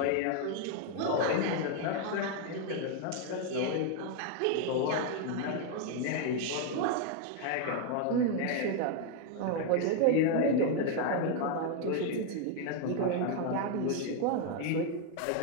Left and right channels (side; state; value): both; different; correlation 0.01